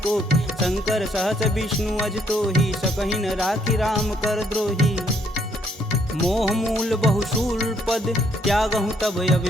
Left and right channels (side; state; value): both; normal; correlation 0.69